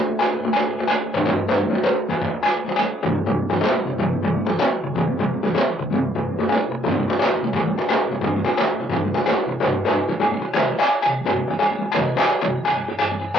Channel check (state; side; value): normal; both; correlation 0.71